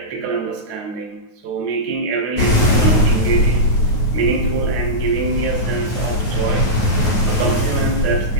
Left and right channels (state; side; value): late; right; 9.3 ms